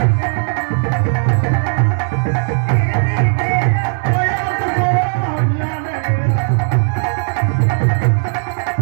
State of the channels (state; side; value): silent; left; digital silence